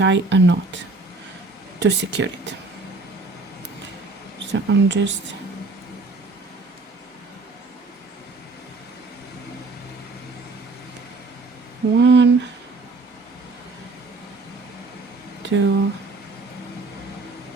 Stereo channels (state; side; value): quieter; left; 3.5 dB